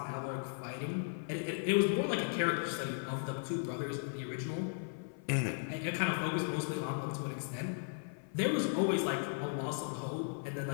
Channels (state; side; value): silent; right; 53 dB below the other